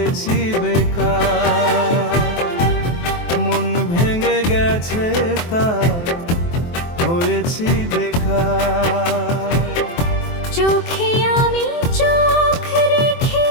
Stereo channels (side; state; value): right; late; 23 ms